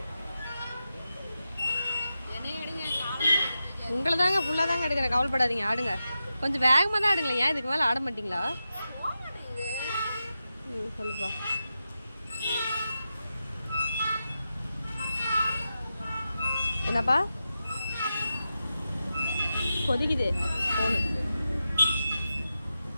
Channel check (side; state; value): both; inverted; correlation -0.90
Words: உங்களை தாங்க ஃபுல்லாக தாங்க எடுக்கிறேன், கவலைப்படாதீங்க, ஆடுங்க. கொஞ்சம் வேகமாக தான் ஆடுங்களேன். ஏன் இதுக்கு மேலே ஆட மாட்டிங்களா? சொல்லுப்பா. என்னப்பா கொதிக்குது போனு?